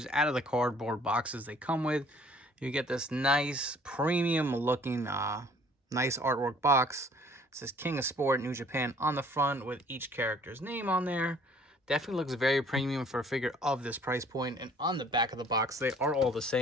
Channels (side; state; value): both; normal; correlation 0.56